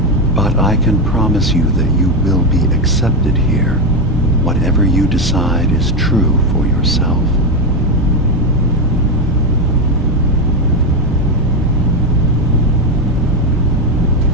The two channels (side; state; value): both; normal; correlation 0.10